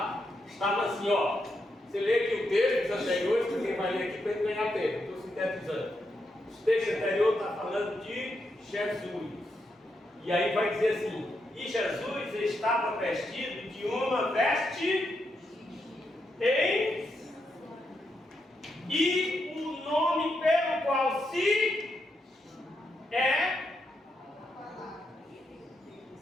estava assim, ó. Você lê aqui o texto dos anteriores, porque vai ler aqui para ele ganhar tempo. Estou sintetizando. O texto anterior está falando de Jesus. E aí vai dizer assim: e Jesus estava vestido de uma veste e o nome pelo qual se é.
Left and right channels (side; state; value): both; normal; correlation 0.82